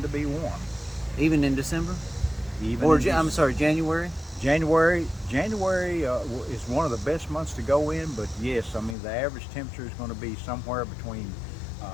to be warm. Even in December? I'm sorry, January? January is one of the best months to go in, but yes, I mean the average temperature is going to be somewhere between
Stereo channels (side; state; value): right; drops out; at 9.0 s